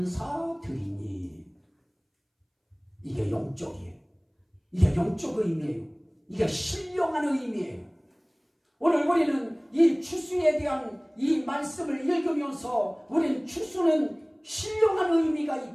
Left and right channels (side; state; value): both; identical; correlation 1.00